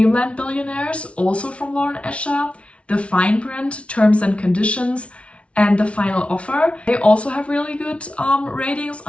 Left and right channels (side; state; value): right; late; 0.061 ms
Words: Billionaires, also from Lauren Escher. The Fine Print, Terms and Conditions, and The Final Offer. They also have really good ratings